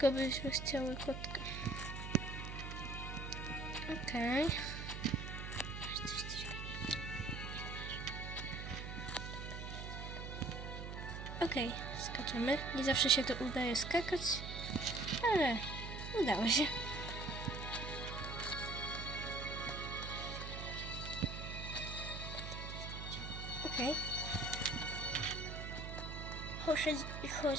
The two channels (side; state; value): right; noise; hum, 6 dB below the sound